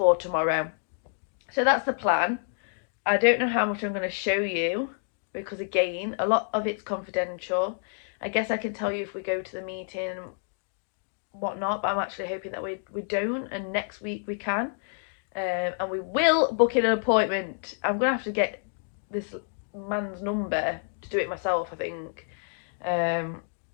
tomorrow. So that's the plan. I don't know how much I'm going to show you, because again, a lot of it's confidential. I guess I can tell you if we go to the meeting and whatnot, but I'm actually hoping that we don't, and next week we can. And we will book in an appointment. I'm gonna have to get this man's number to do it myself, I think.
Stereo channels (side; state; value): right; silent; digital silence